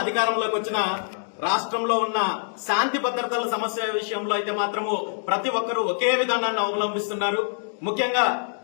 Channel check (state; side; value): silent; right; digital silence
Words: అధికారంలోకి వచ్చినా రాష్ట్రంలో ఉన్న శాంతి భద్రతల సమస్య విషయంలో అయితే మాత్రము ప్రతి ఒక్కరూ ఒకే విధానాన్ని అవలంబిస్తున్నారు. ముఖ్యంగా